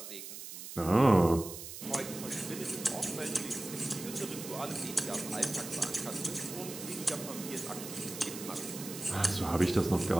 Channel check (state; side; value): noise; right; hiss, 10 dB below the sound